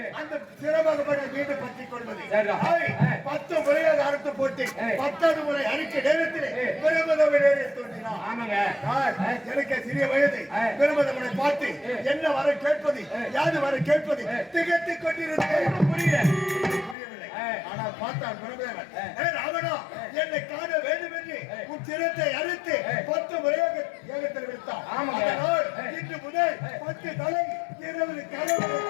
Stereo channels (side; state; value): right; drops out; at 16.9 s